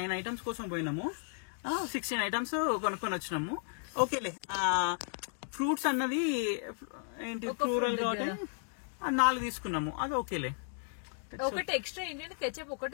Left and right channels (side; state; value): right; silent; 55 dB below the other